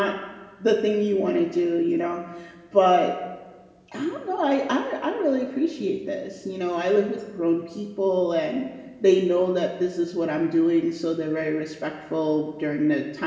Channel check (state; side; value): identical; both; correlation 1.00